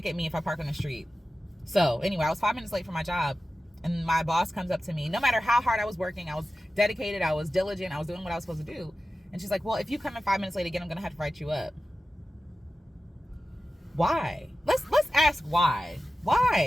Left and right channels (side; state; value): both; normal; correlation 0.94